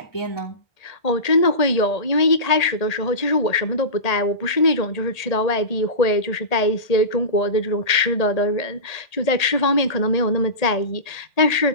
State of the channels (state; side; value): late; right; 1.8 ms